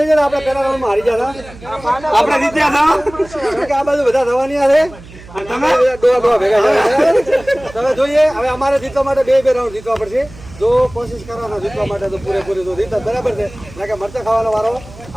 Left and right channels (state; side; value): noise; right; hum, 19 dB below the sound